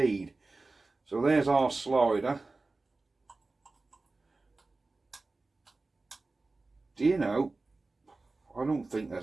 So there's our slider. Do you know, I don't think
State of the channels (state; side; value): quieter; left; 3.4 dB